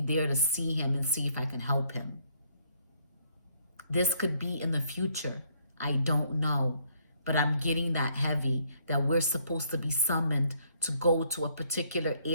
there to see him and see if I can help him. This could be in the future. I don't know. But I'm getting that heavy that we're supposed to be summoned to go to a particular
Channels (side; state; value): both; inverted; correlation -0.68